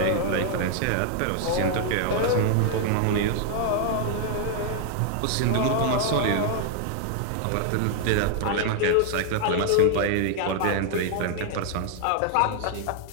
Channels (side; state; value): both; different; correlation 0.00